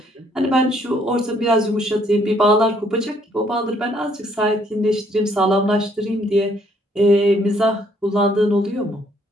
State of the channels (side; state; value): both; normal; correlation 0.66